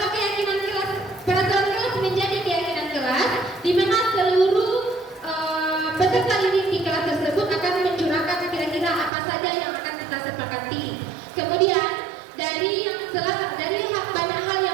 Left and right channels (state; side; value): drops out; left; at 9.1 s